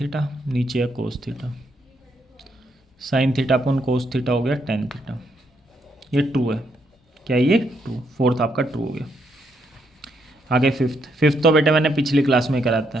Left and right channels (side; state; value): both; normal; correlation 0.76